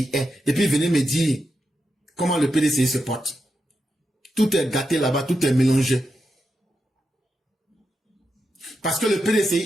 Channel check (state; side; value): normal; both; correlation 0.86